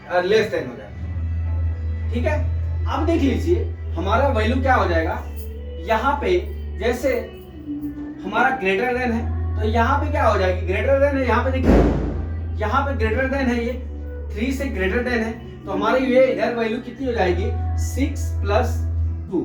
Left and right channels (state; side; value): identical; both; correlation 1.00